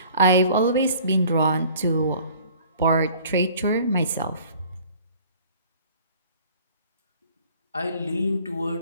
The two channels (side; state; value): both; inverted; correlation -0.50